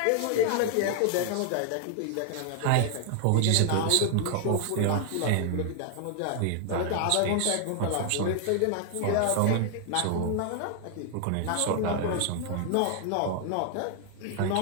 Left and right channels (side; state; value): both; different; correlation 0.00